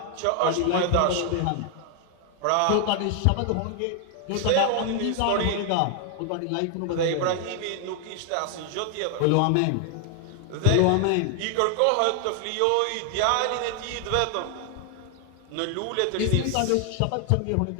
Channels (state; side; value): different; both; correlation 0.00